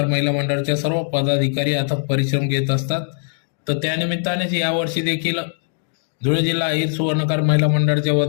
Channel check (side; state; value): right; silent; 65 dB below the other